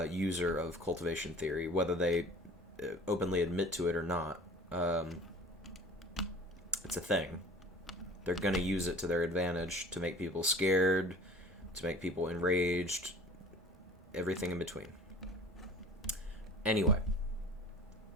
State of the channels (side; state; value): both; normal; correlation 0.45